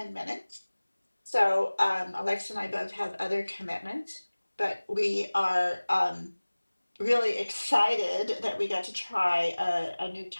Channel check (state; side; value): inverted; both; correlation -1.00